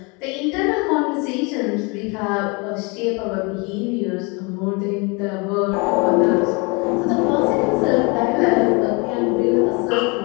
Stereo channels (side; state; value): right; quieter; 29.8 dB